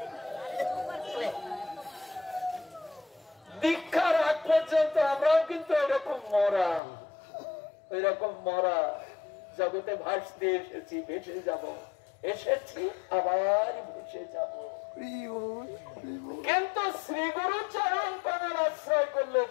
দীক্ষার আগ পর্যন্ত আমরাও কিন্তু এরকম মরা, এরকম মরা জগতে ভাসতে এসেছি, ভেসে যাব, এসেছি আবার ভেসে যাব। কিন্তু শ্রী গুরু চরণ কমল আশ্রয় করলে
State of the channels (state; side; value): drops out; right; at 6.8 s